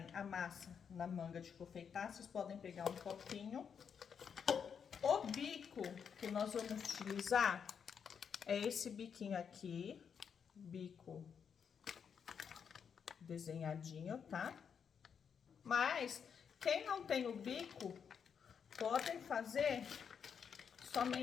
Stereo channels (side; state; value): right; quieter; 7.1 dB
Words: a massa na manga de confeitar, vocês podem pegar um copinho. O bico que nós vamos utilizar é esse biquinho aqui, bico desenhadinho, tá? Mas, quem não tem o bico, podem fazer